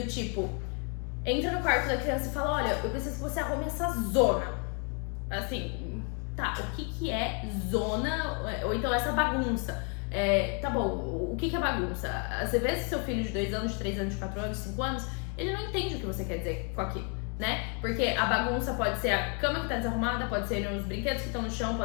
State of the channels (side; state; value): right; quieter; 37.8 dB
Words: tipo, entra no quarto da criança e fala, olha, eu preciso que você arrume essa zona. Assim, tá, o que é zona, ou então essa bagunça? Tá bom, o que é bagunça? Você vê se seu filho de 2 anos, de 3 anos, de 4 anos, de 5 anos, ele não entende o que você quer dizer com aquilo, né? Porque a bagunça pode ser a cama que tá desarrumada, pode ser os brinquedos que estão no chão,